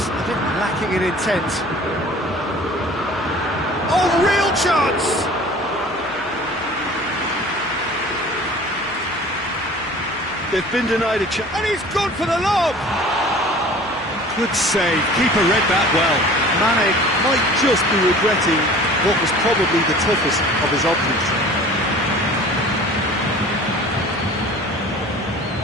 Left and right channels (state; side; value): noise; left; hum, 24 dB below the sound